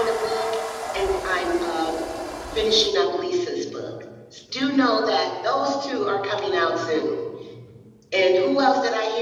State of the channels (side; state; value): both; identical; correlation 1.00